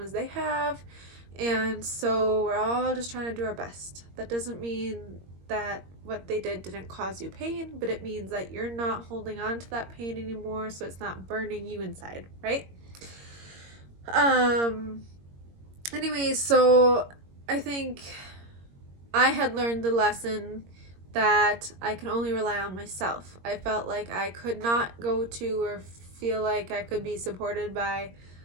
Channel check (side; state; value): left; late; 21 ms